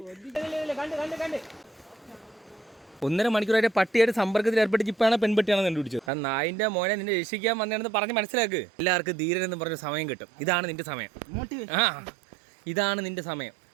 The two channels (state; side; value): drops out; left; at 6.1 s